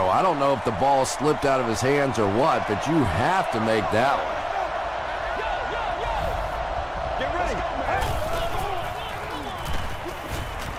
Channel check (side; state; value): both; identical; correlation 1.00